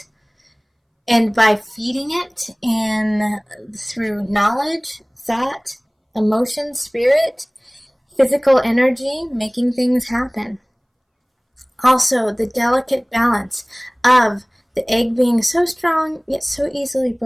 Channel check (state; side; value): identical; both; correlation 1.00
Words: And by feeding it through knowledge, thought, emotion, spirit, physical energy, making things happen. Also, the delicate balance of the egg being so strong, yet so easily